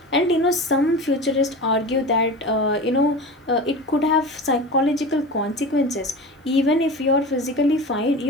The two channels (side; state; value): both; normal; correlation 0.31